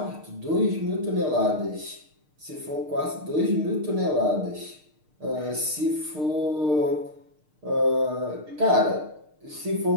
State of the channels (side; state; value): left; late; 6.6 ms